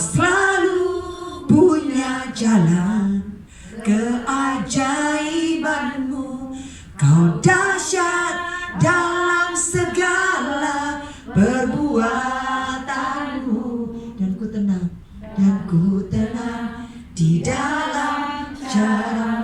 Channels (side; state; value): both; identical; correlation 1.00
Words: punya jalan keajaibanmu. Kau dahsyat dalam segala perbuatanmu. Dan ku tenang di dalam